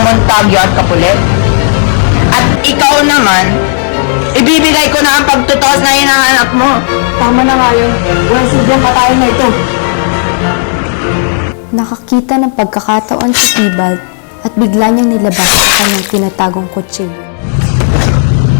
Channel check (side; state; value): right; silent; digital silence